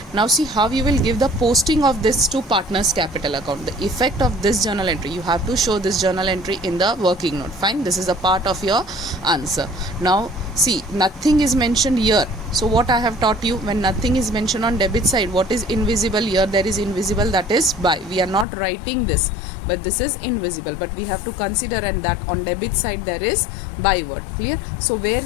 Now see how you will give the posting of this to partner's capital account. The effect of this journal entry, you have to show this journal entry in the working note. Fine, this is a part of your answer. Now see, nothing is mentioned here. So what I have taught you, when nothing is mentioned on debit side, what is invisible here? There is invisible, that is by. We are not writing this, but this is invisible, but we have to consider, and that on debit side there is by word. Clear? So where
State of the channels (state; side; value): drops out; right; at 18.4 s